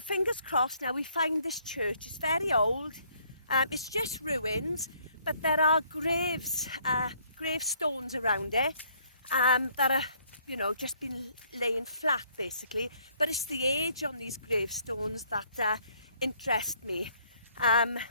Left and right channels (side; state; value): both; inverted; correlation -0.65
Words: crossed now we find this church. It's very old. It's just ruins, but there are gravestones around it that are, you know, just been laying flat basically. But it's the age on these gravestones that interest me.